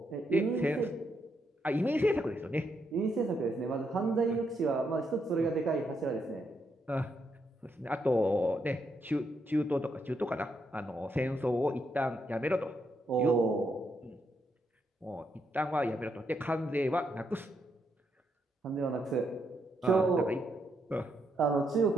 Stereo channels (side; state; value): both; normal; correlation 0.79